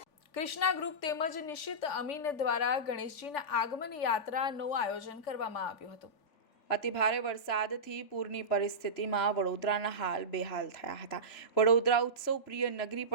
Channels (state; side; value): late; right; 3.4 ms